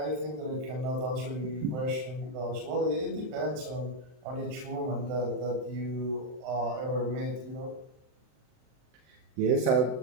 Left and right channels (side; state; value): left; late; 39 ms